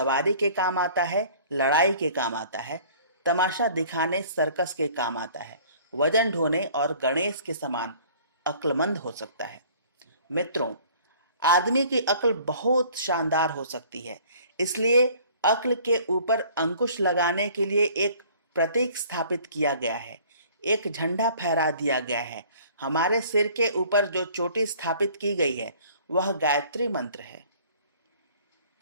के काम आता है, लड़ाई के काम आता है, तमाशा दिखाने सर्कस के काम आता है, वजन ढोने और गणेश के समान अक्लमंद हो सकता है। मित्रों, आदमी की अक्ल बहुत शानदार हो सकती है। इसलिए अक्ल के ऊपर अंकुश लगाने के लिए एक प्रतीक स्थापित किया गया है, एक झंडा फहरा दिया गया है। हमारे सिर के ऊपर जो चोटी स्थापित की गई है वह गायत्री मंत्र है।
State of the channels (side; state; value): both; inverted; correlation -0.52